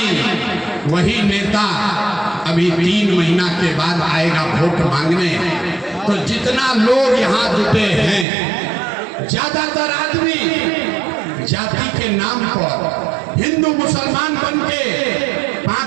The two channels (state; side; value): drops out; left; at 8.2 s